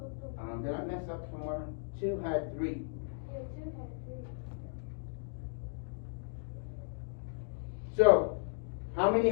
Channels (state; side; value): silent; right; digital silence